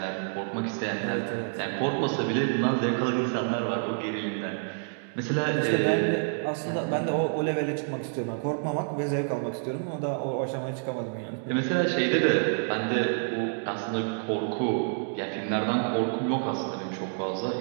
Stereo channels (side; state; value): left; silent; digital silence